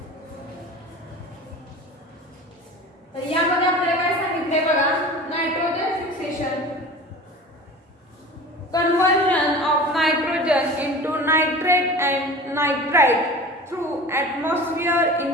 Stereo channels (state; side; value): normal; both; correlation 0.37